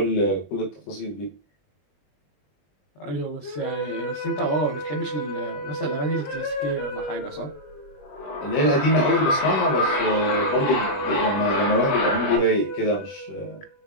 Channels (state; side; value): late; right; 21 ms